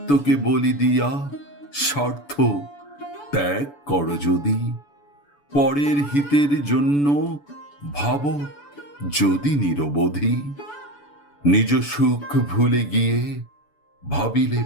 বলি দিয়া স্বার্থ ত্যাগ করো যদি, পরের হিতের জন্য ভাবো যদি নিরবধি। নিজ সুখ ভুলে গিয়ে ভাবিলে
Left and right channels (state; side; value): late; right; 6.9 ms